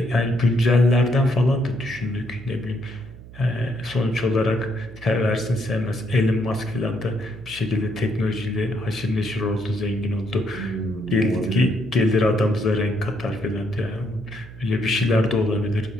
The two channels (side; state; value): right; noise; hum, 17 dB below the sound